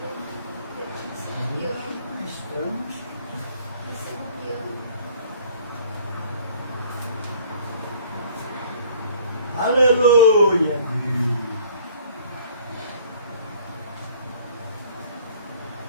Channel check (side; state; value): both; inverted; correlation -0.53